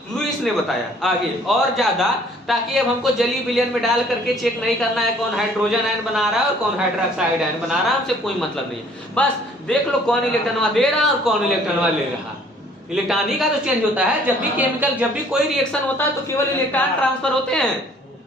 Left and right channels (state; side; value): normal; both; correlation 0.57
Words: लुईस ने बताया आगे और ज्यादा, ताकि अब हमको जली विलयन में डाल करके चेक नहीं करना है कौन हाइड्रोजन आयन बना रहा है और कौन हाइड्रोक्साइड आयन बना रहा है, हमसे कोई मतलब नहीं है। बस देख लो कौन इलेक्ट्रॉन दे रहा है और कौन इलेक्ट्रॉन ले रहा। इलेक्ट्रॉन ही का तो चेंज होता है। जब भी केमिकल, जब भी कोई रिएक्शन होता है तो केवल इलेक्ट्रॉन ट्रांसफर होते हैं,